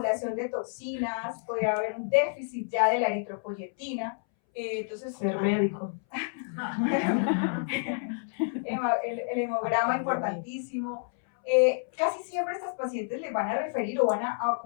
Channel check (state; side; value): silent; right; 58 dB below the other